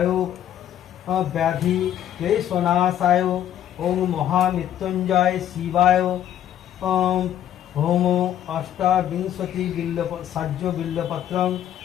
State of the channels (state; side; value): quieter; right; 11.0 dB